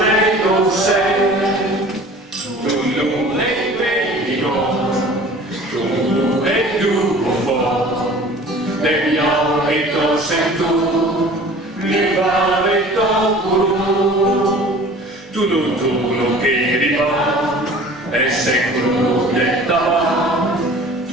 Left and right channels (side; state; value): both; normal; correlation 0.45